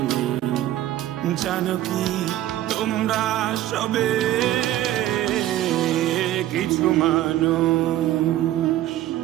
নেই, জানো কি তোমরা সবে কিছু মানুষ,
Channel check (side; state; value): left; quieter; 13.7 dB